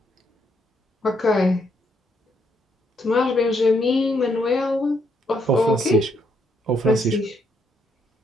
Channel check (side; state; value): both; normal; correlation 0.74